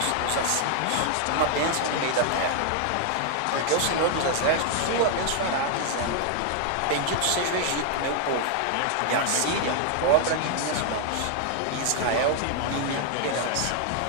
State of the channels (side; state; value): both; different; correlation 0.00